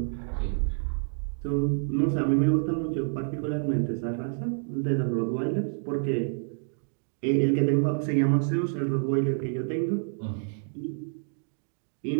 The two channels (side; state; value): left; silent; digital silence